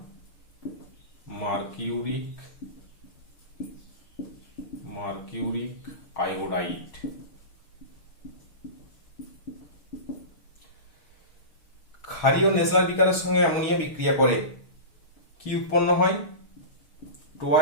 mercuric iodide. ক্ষারীয় নেসলার বিকারের সঙ্গে অ্যামোনিয়া বিক্রিয়া করে কি উৎপন্ন হয়?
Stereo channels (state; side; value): late; right; 6.3 ms